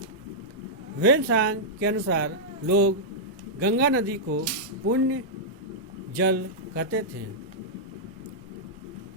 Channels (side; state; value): both; normal; correlation -0.09